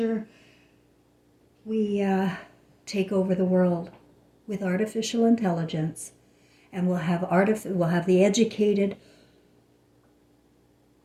we take over the world with artificial intelligence, and we'll have the educated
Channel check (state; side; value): identical; both; correlation 1.00